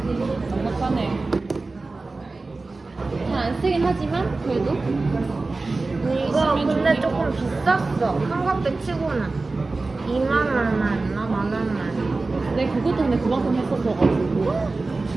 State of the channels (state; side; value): quieter; left; 3.5 dB